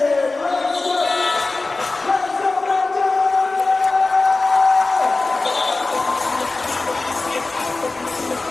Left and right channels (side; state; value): right; quieter; 3.4 dB